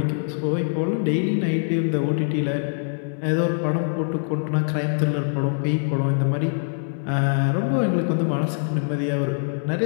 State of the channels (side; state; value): right; silent; digital silence